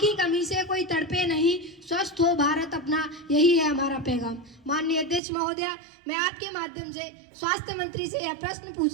कमी से कोई तड़पे नहीं, स्वस्थ हो भारत अपना, यही है हमारा पैगाम। माननीय अध्यक्ष महोदया, मैं आपके माध्यम से स्वास्थ्य मंत्री से यह प्रश्न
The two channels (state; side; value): drops out; left; at 5.2 s